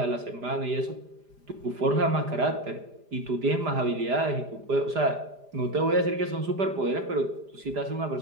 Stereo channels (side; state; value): left; late; 4.9 ms